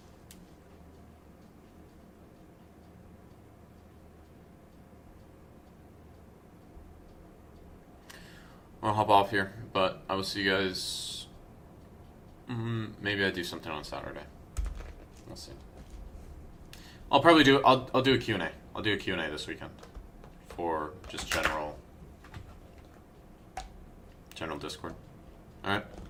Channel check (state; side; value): identical; both; correlation 1.00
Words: I'll hop off here, but I will see you guys. Maybe I do something on Saturday. We'll see. I'll probably do. I'll do a Q&A. I'll do a Q&A this weekend for just general Discord. All right.